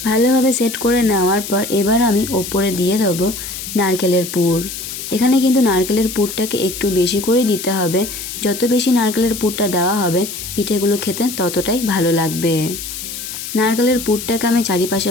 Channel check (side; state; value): left; noise; hiss, 8 dB below the sound